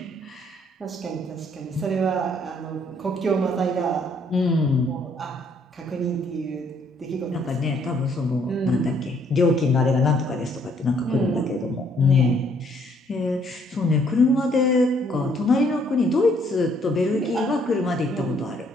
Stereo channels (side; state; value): both; normal; correlation 0.66